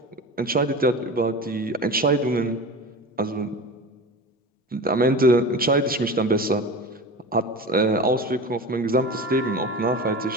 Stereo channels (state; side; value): normal; both; correlation 0.31